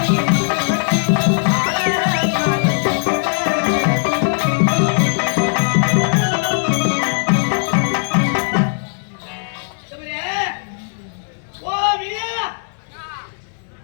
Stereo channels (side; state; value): right; silent; digital silence